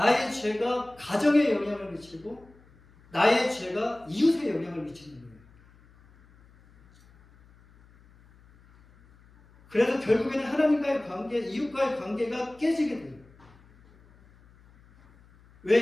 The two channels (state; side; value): noise; left; hum, 28 dB below the sound